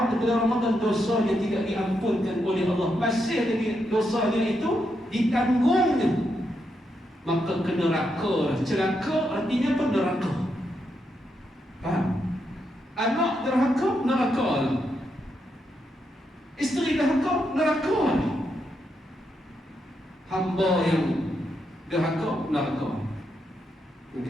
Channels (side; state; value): both; normal; correlation 0.82